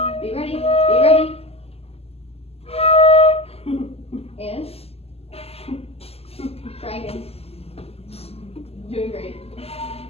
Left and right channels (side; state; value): right; late; 0.29 ms